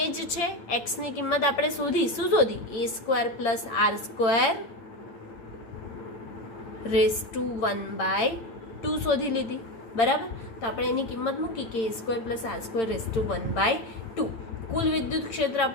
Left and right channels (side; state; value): right; late; 8.8 ms